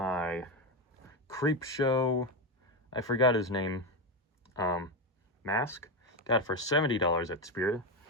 Creep Show, I forgot his name, mask. Got it for $70 at Spirit.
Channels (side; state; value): both; normal; correlation 0.11